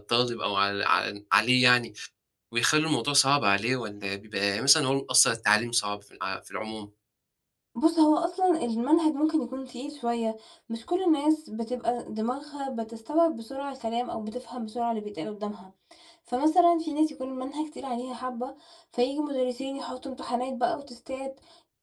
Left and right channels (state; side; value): identical; both; correlation 1.00